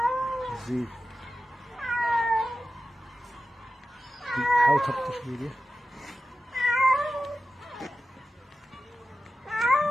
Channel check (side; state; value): both; normal; correlation 0.93